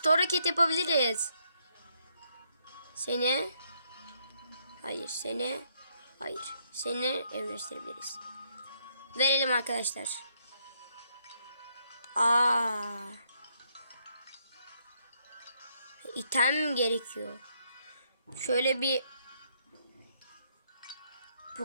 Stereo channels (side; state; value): both; inverted; correlation -0.73